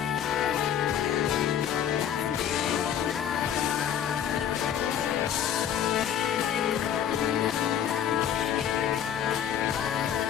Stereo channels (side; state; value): right; quieter; 9.4 dB